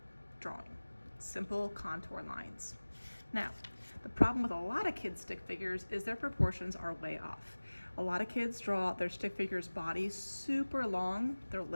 drawing. Simple contour lines. Now, the problem with a lot of kids' stick figures is their proportions are way off. A lot of kids draw their stick figure's body super long, their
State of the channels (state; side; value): inverted; both; correlation -1.00